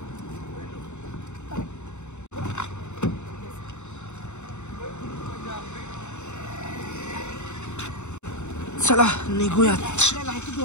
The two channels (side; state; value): right; late; 0.83 ms